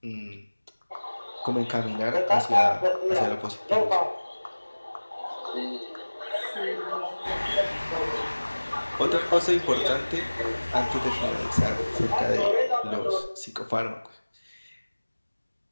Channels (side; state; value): both; inverted; correlation -1.00